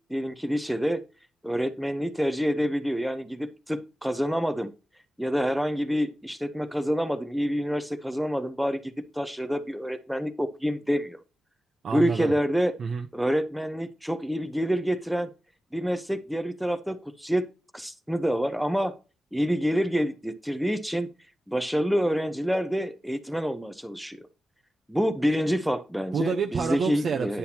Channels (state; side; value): normal; both; correlation 0.95